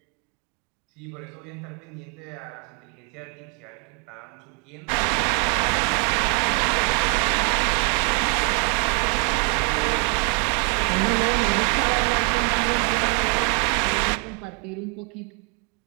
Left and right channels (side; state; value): left; quieter; 34.4 dB